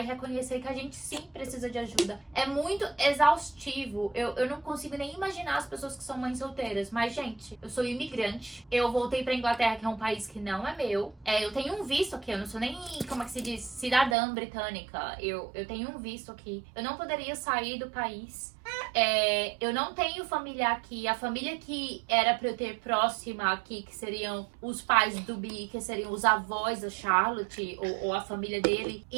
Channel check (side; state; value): left; drops out; at 14.2 s